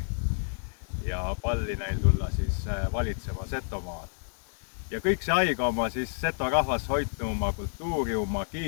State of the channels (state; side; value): silent; right; 58 dB below the other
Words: ja palli neil tulla siis valitsema Setomaad. Ja kõik see aega oma siis Seto rahvas hoidnu oma kultuuri, oma